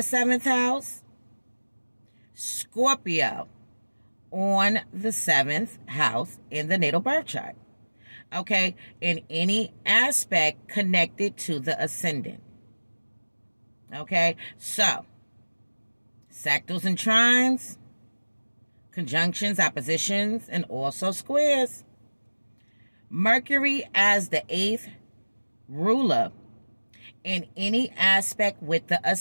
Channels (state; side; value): inverted; both; correlation -1.00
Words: house, Scorpio on the 7th house in the natal birth chart. Okay, in any aspect connected to the ascendant. Okay, so sectals and trines, conjunctions, oppositions, and also squares. Mercury as the 8th ruler in any aspect with the